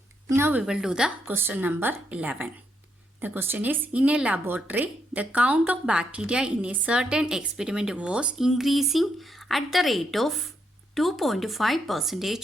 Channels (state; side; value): normal; both; correlation 0.78